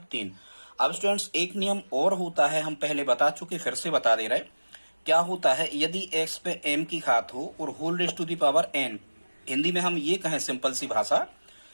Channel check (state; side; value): inverted; both; correlation -1.00